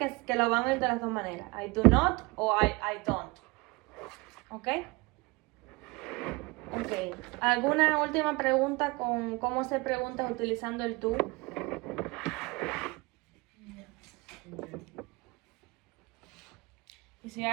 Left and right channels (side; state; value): left; quieter; 24.8 dB